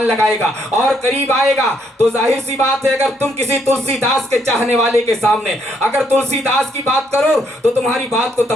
लगाएगा और करीब आएगा। तो जाहिर सी बात है, अगर तुम किसी तुलसीदास के चाहने वाले के सामने अगर तुलसीदास की बात करो तो तुम्हारी बात को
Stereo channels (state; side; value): normal; both; correlation 0.72